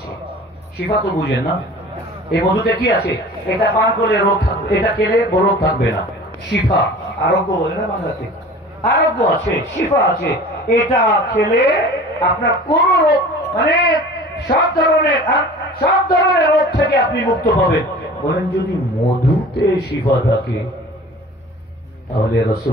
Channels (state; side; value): normal; both; correlation 0.42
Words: শিফা তো বুঝেন না, এই মধুতে কি আছে? এটা পান করলে রোগ থাকবে, এটা খেলে রোগ থাকবে না। শিফা, আরোগ্য বলে না বাংলাতে, আরোগ্য আছে, শিফা আছে। এটা খেলে আপনার কোন রোগ, মানে সব ধরনের রোগ থেকে আপনি মুক্ত পাবেন। বলেন যদি মধুতে শিফা থাকে তাহলে